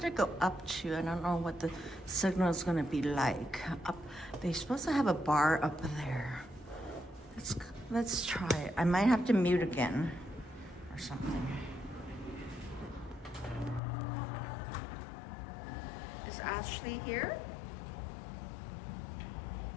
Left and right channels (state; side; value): drops out; right; at 13.8 s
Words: go up to. I don't know what the signal is going to be like. Up, they're supposed to have a bar up there. Let's try it. I might have to mute again or something. Is Ashley here?